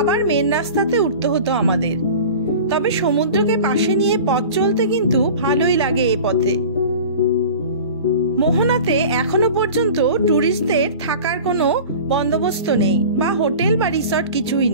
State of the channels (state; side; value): inverted; both; correlation -0.38